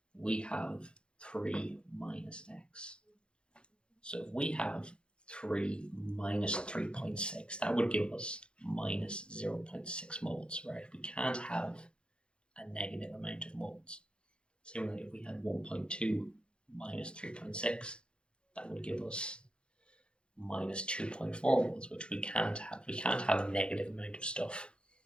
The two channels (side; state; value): right; late; 0.055 ms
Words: we have 3 minus x. So if we have 3 minus 3.6, that would give us minus 0.6 moles, right? We can't have a negative amount of moles. Similarly, if we had 1.2 minus 3.6, that would give us minus 2.4 moles, which we can't have. We can't have a negative amount of stuff.